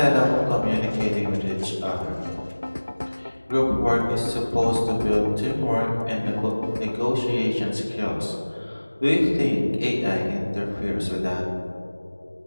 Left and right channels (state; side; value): inverted; both; correlation -1.00